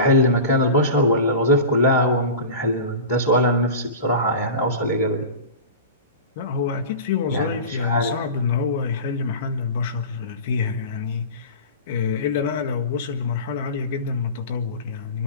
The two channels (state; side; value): inverted; both; correlation -0.31